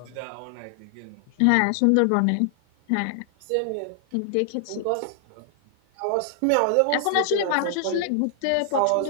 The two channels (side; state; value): both; different; correlation 0.00